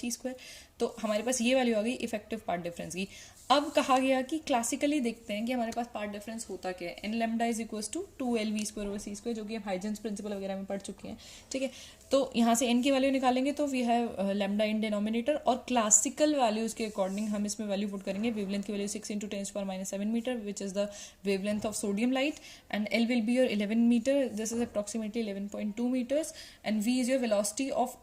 तो हमारे पास ये वैल्यू आ गई इफेक्टिव पार्ट डिफरेंस की। अब कहा गया कि क्लासिकली देखते हैं कि हमारे पास पार्ट डिफरेंस होता क्या है, N lambda is equals to 2lv²/c², जो कि हम हाइजेंस प्रिंसिपल वगैरह में पढ़ चुके हैं, ठीक है। तो यहाँ से n की वैल्यू निकालेंगे तो we have lambda in denominator, और क्लासिकल वैल्यूज के अकॉर्डिंग हम इसमें वैल्यू पुट करेंगे। वेवलेंथ की value 6 × 10⁻⁷ metre, which is the wavelength of sodium light, and l will be your 11 metre, this is approximately 11.2 metres, and v is your velocity of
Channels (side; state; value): both; identical; correlation 1.00